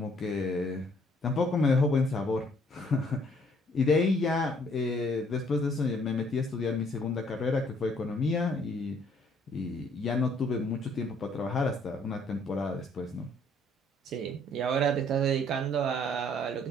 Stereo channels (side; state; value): both; normal; correlation 0.63